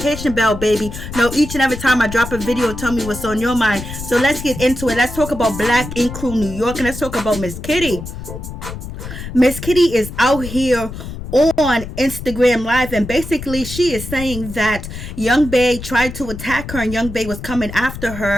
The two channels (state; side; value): noise; left; rumble, 10 dB below the sound